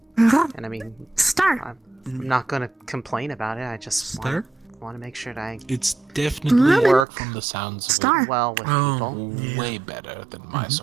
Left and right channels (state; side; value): drops out; left; at 7.1 s